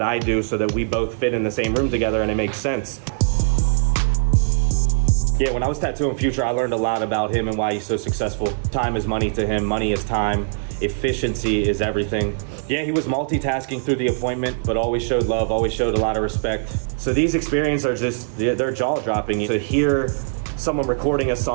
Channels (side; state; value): left; silent; digital silence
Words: I do so that we both fit in the same room together and it makes sense. Yeah, when I was tattooing Future, I learned a lot about him and why he's so successful. Time is money to him, money is time. Efficiency is everything. Yeah, he was multitasking through the appointment, but always showed love, always showed a lot of respect. So these experiences are just, they're jaw-dropping. To hear someone recording a